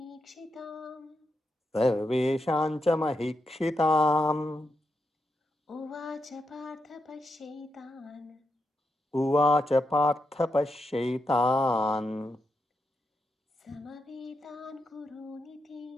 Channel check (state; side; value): normal; both; correlation 0.85